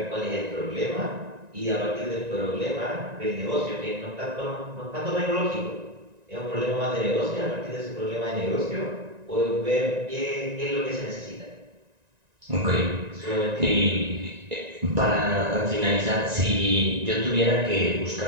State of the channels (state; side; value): late; left; 1.9 ms